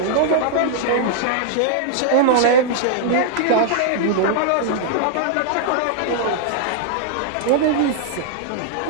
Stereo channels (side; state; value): both; different; correlation -0.01